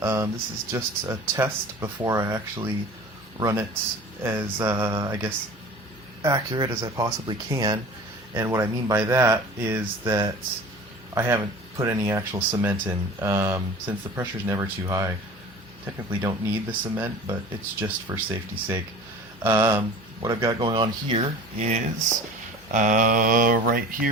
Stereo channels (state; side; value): normal; both; correlation 0.40